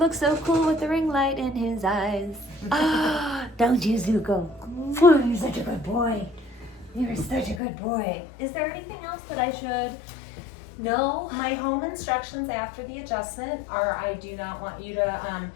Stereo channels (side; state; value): right; drops out; at 7.6 s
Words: so cool with the ring light in his eyes. Ah, don't you, Zugo? You're such a good boy. You're such a good boy. Is there anything else that I should know? My home instructions after the adjustment are: I do not want you to